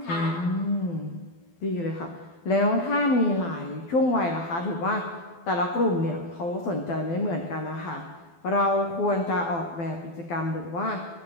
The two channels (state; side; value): late; right; 12 ms